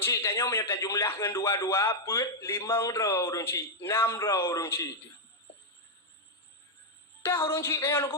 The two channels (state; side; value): normal; both; correlation -0.02